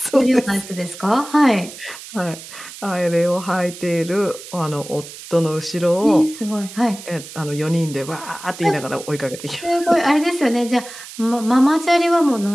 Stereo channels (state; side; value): noise; right; hiss, 14 dB below the sound